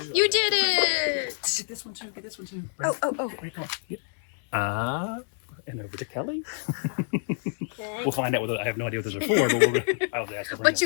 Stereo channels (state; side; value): silent; right; 60 dB below the other